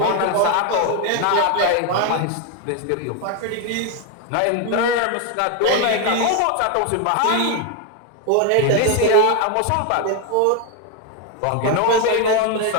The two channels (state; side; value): different; both; correlation 0.01